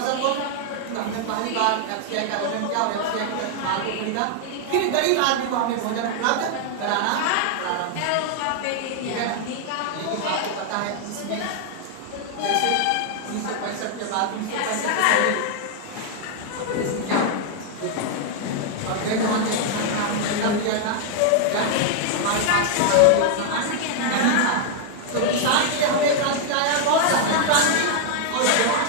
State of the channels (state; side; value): different; both; correlation 0.00